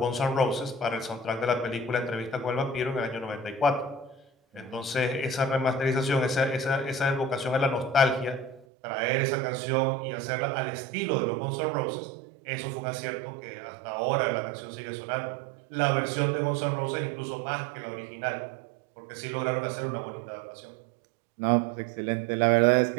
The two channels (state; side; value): drops out; left; at 8.7 s